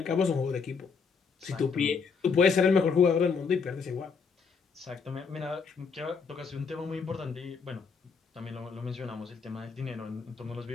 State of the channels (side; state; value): right; quieter; 5.5 dB